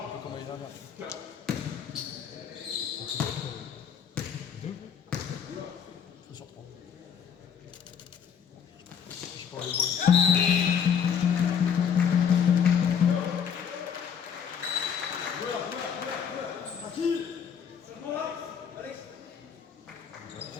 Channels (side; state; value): right; quieter; 7.6 dB